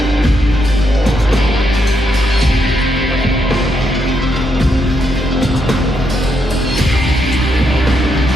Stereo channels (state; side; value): normal; both; correlation 0.79